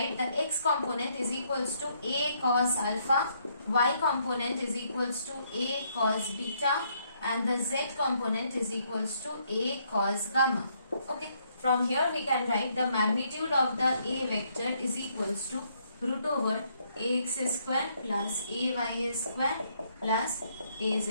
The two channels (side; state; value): both; inverted; correlation -0.71